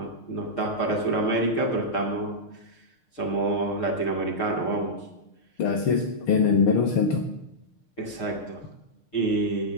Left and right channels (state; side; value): late; right; 6.5 ms